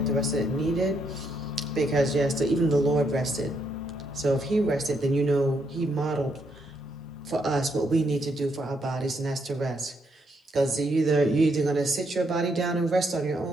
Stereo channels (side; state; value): both; normal; correlation 0.76